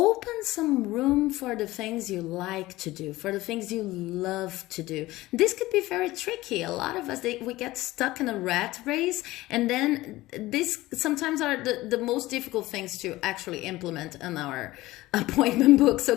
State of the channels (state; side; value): quieter; right; 18.1 dB